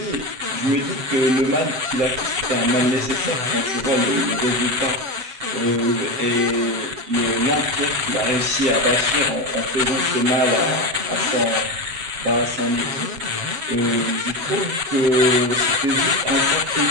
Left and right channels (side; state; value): left; late; 7.8 ms